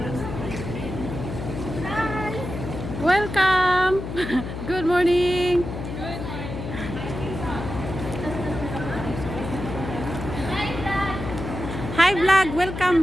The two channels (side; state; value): left; noise; hum, 7 dB below the sound